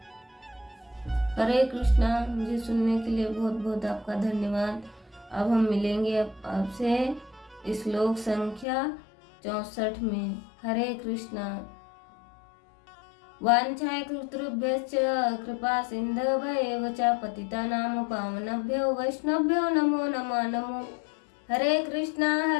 हरे कृष्णा। मुझे सुनने के लिए बहुत बहुत आपका धन्यवाद। अब हम मिलेंगे आपसे श्लोक संख्या 64 में। हरे कृष्णा। वाञ्छाकल्पतरुभ्यश्च कृपा सिन्धुभ्येव च पतितानां पावनेभ्यो वैष्णवेभ्यो नमो नमो। हरे कृष्णा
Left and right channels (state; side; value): drops out; right; at 8.7 s